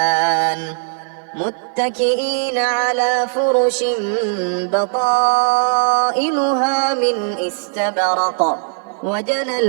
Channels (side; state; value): left; silent; 56 dB below the other